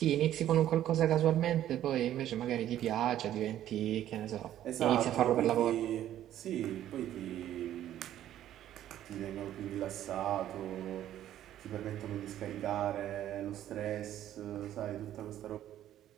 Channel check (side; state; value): left; quieter; 12.0 dB